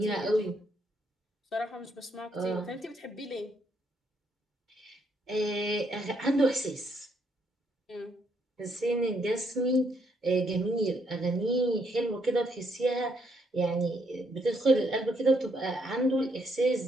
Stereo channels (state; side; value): normal; both; correlation 0.73